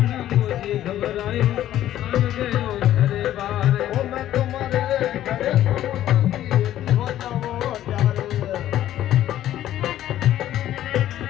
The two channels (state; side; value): quieter; right; 12.5 dB